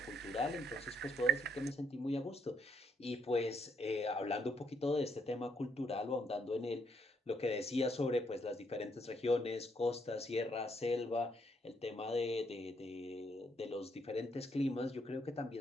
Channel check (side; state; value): both; normal; correlation 0.73